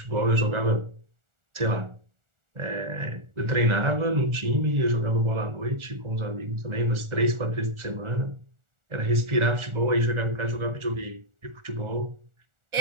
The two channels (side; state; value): left; late; 1.4 ms